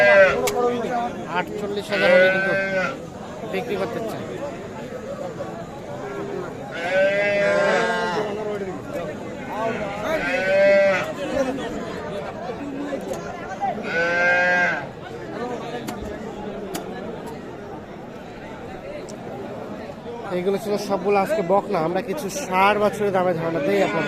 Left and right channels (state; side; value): identical; both; correlation 1.00